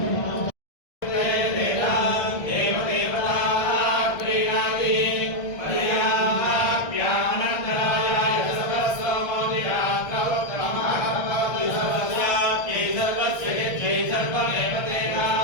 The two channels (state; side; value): late; right; 1.7 ms